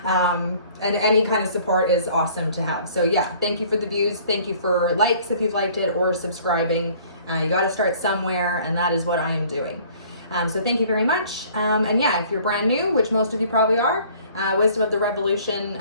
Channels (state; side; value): inverted; both; correlation -0.54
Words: And any kind of support is awesome to have. So yeah, thank you for the views. Thank you for likes if you've liked it, or subscribing. You got to start somewhere, and that is what I am doing. So thank you very much. And yeah, if you're brand new, which most of you probably are, Wisdom of the Revolution,